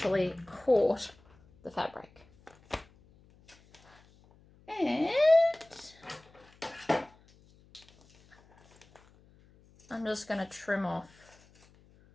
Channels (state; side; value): noise; left; hum, 28 dB below the sound